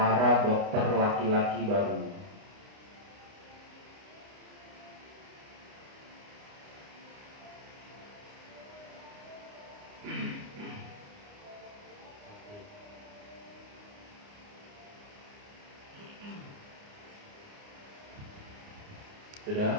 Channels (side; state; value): left; late; 29 ms